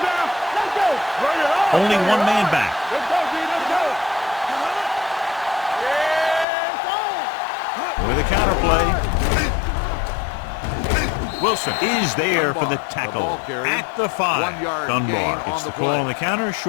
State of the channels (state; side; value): drops out; right; at 6.5 s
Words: Let's go. Bring it on. Only one man back. Let's go, D. Let's go. Yeah, With a counter play. Wilson is there for the tackle at the 5. Dunbar gets the call on the counter.